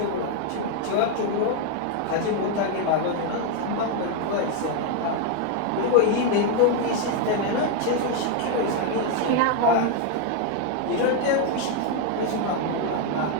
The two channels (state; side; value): different; both; correlation 0.01